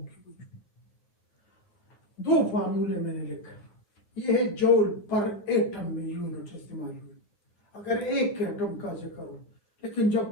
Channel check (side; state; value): right; late; 9.6 ms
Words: दो फार्मूले मैंने लिखे, ये है जूल पर एटम में यूनिट इस्तेमाल हुई अगर एक एटम का जिक्र हो, लेकिन